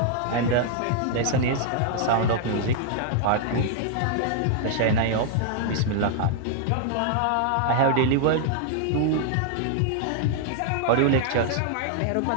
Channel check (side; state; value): both; different; correlation -0.01